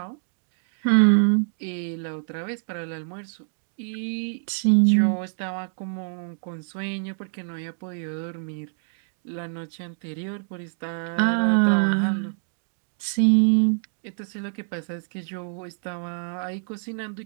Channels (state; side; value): silent; left; digital silence